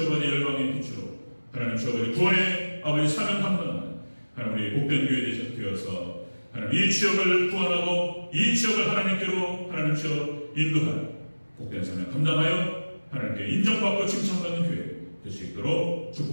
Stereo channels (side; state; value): both; inverted; correlation -1.00